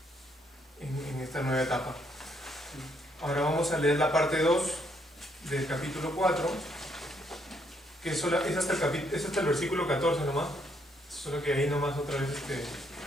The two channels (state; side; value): normal; both; correlation 0.72